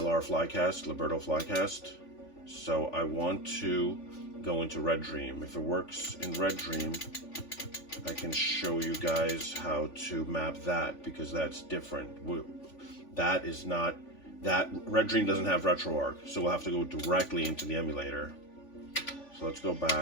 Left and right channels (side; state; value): right; late; 3.5 ms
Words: Flycast, Liberto Flycast. So I want to go into Redream. If it works in Redream, I can show you guys how to map that, because that's different. That is not, Redream doesn't have retroarch, so we'll have to go directly into the emulator. So let's go